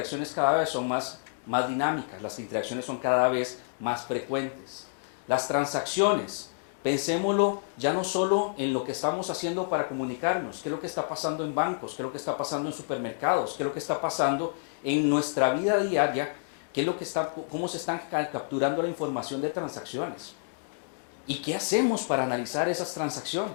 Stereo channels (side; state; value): right; silent; digital silence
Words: cada vez son más dinámicas, las interacciones son cada vez más frecuentes. Las transacciones, pensémoslo ya no solo en lo que estamos haciendo para comunicarnos, qué es lo que está pasando en bancos, qué es lo que está pasando en supermercados, qué es lo que está pasando en nuestra vida diaria, qué es lo que cómo se están capturando la información de transacciones. ¿Y qué hacemos para analizar esas